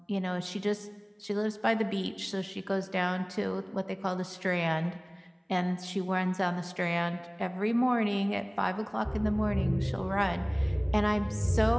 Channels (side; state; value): both; identical; correlation 1.00